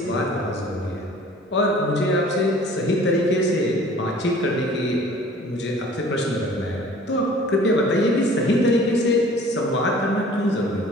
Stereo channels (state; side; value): normal; both; correlation 0.49